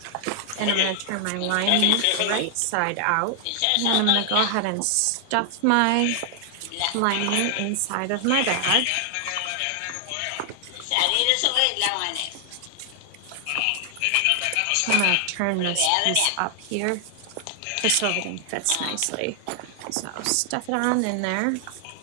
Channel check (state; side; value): different; both; correlation 0.00